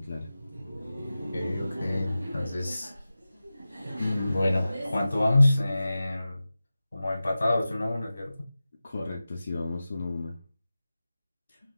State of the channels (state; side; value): inverted; both; correlation -0.95